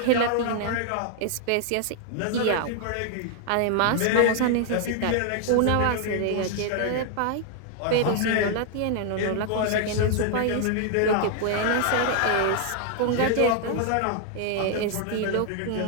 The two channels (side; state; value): both; different; correlation 0.00